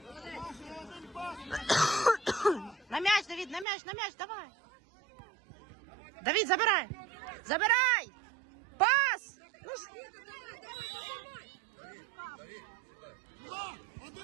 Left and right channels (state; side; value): drops out; left; at 3.7 s